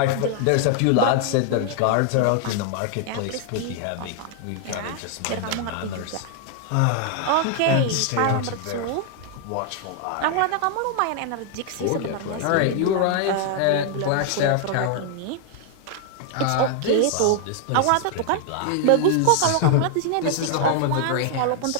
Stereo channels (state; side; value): different; both; correlation 0.00